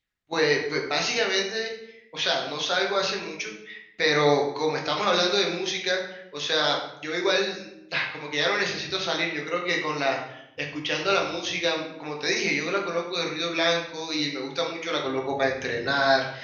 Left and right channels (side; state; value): both; identical; correlation 1.00